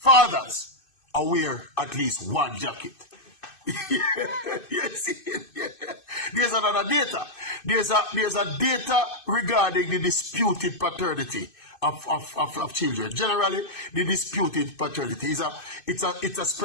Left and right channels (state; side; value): late; right; 2.6 ms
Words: wear at least 1 jacket. Yes, yeah. There's another data. There's a data regarding the disputed paternity of children. Generally, the disputed paternity is it's a